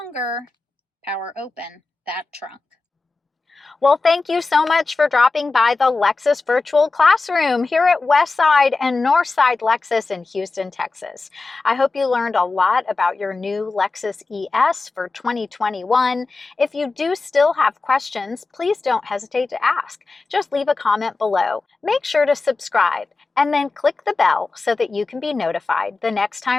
power open that trunk. Well, thank you so much for dropping by the Lexus Virtual Classroom here at Westside and Northside Lexus in Houston, Texas. I hope you learned a lot about your new Lexus ES for 2021. If you do still have questions, please don't hesitate to ask. Just leave a comment below. Make sure to subscribe and then click the bell so that you can be notified the next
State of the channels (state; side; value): quieter; right; 3.8 dB